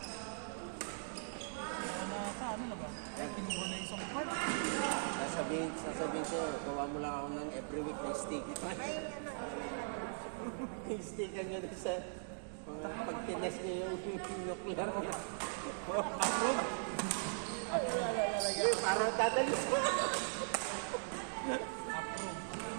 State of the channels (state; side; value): silent; left; digital silence